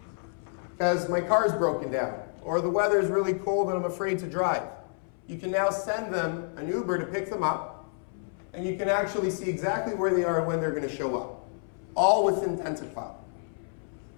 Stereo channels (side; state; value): right; silent; 59 dB below the other